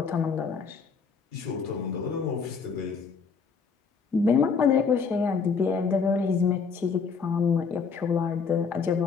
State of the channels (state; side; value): quieter; right; 5.5 dB